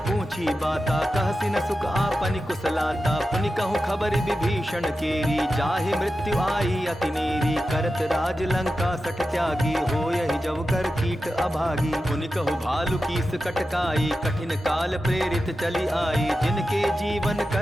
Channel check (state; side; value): normal; both; correlation 0.92